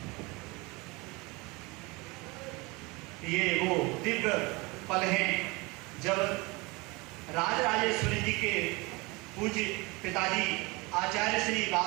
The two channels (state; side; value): quieter; left; 25.2 dB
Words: ये वो दिव्य पल हैं जब राजराजेश्वरी जी के पूज्य पिताजी आचार्य श्री